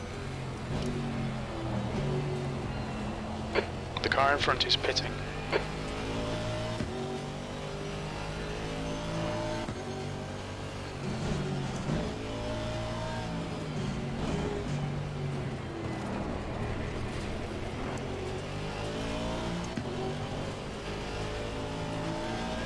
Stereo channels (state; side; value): identical; both; correlation 1.00